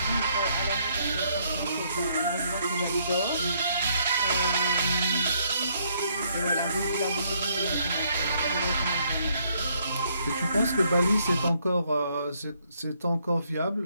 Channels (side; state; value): both; inverted; correlation -0.70